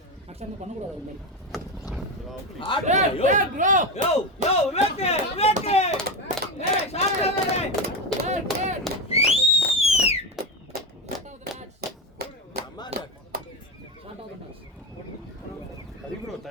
ஆக்சுவலாக பண்ணக்கூடாது அது மாதிரி. சரி ப்ரோ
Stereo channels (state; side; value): normal; both; correlation 0.16